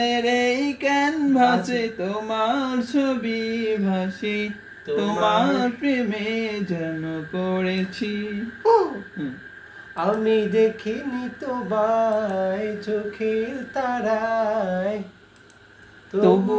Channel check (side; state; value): both; identical; correlation 1.00